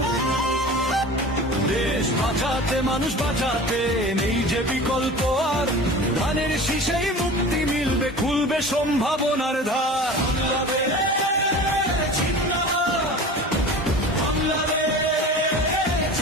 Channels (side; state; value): both; normal; correlation 0.37